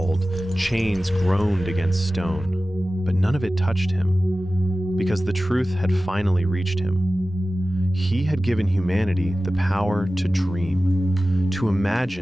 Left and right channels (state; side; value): normal; both; correlation 0.96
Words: chains groaned against stone, but none of it touched him, because the truth had finally reached him. He had given humanity the power to dream, to